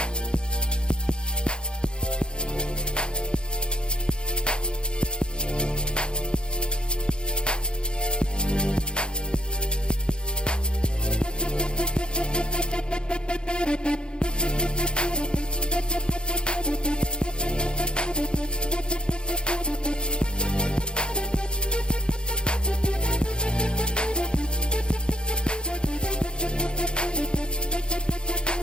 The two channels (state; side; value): late; right; 0.050 ms